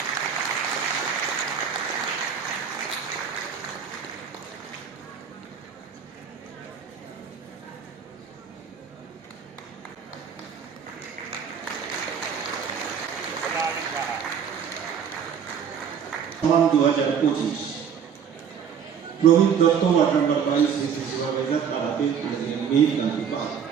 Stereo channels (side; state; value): left; quieter; 7.5 dB